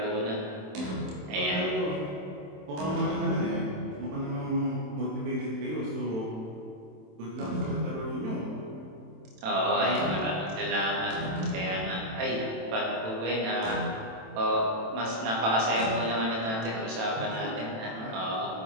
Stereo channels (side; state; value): left; late; 27 ms